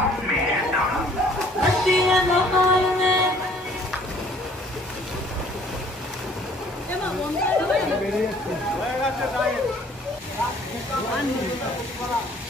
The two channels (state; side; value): normal; both; correlation 0.57